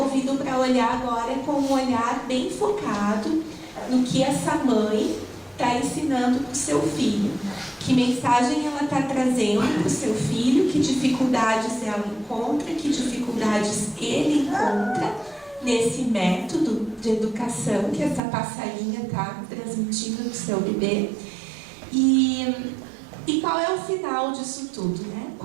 para olhar agora com um olhar bem focado no que essa mãe está ensinando para o seu filho. Que mensagem ela está trazendo para o seu filho, que dificuldades ela encontra, que dificuldades ele encontra nesse método de educação que essa passarinha está transmitindo no seu bebê. E qual é o final disso tudo,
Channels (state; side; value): drops out; left; at 18.2 s